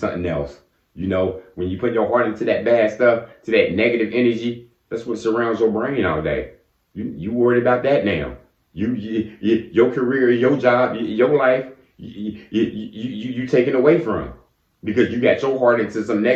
else. You know, when you put your heart into that bad stuff, to that negative energy, that's what surrounds your brain all day. You worried about that now. Your career, your job, your life, you taken away from because you got your heart into some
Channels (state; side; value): identical; both; correlation 1.00